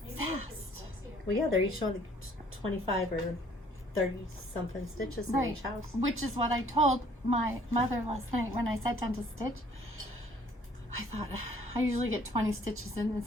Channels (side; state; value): both; normal; correlation 0.59